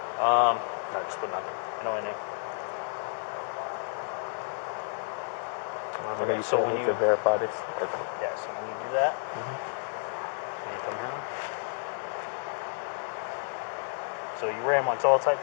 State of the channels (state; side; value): silent; right; 57 dB below the other